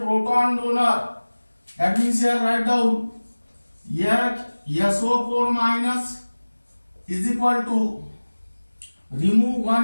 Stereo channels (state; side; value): inverted; both; correlation -1.00